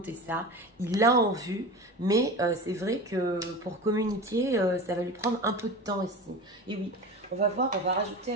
ça. Il l'a en vue, mais c'est vrai que pour communiquer, ça va lui prendre un peu de temps ici. Et oui, on va voir, on va rajouter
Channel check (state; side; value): normal; both; correlation 0.30